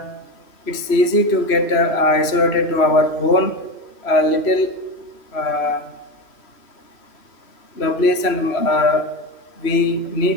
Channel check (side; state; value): right; late; 3.0 ms